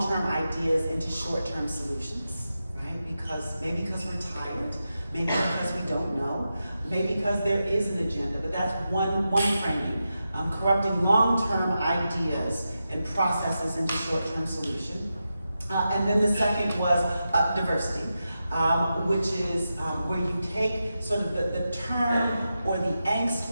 ideas into short-term solutions, right? Maybe because we're tired, maybe because we don't know, maybe because there is an agenda, but that's one framing. Corrupting long-term ideas and processes into short-term solution. And then the second was diversity, which is where you take sort of the term or the angst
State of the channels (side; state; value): both; inverted; correlation -0.89